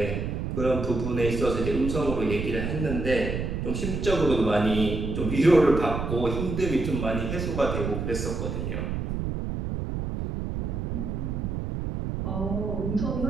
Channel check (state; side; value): noise; right; rumble, 3 dB below the sound